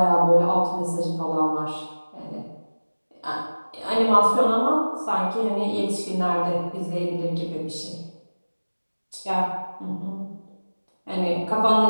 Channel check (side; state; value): both; inverted; correlation -1.00